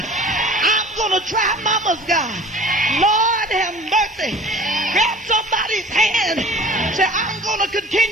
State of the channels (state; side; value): normal; both; correlation 0.44